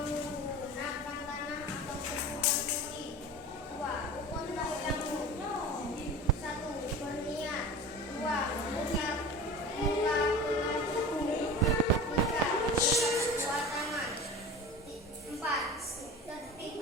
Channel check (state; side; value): normal; both; correlation 0.35